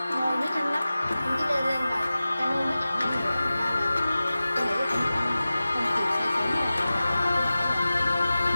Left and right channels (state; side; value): inverted; both; correlation -0.96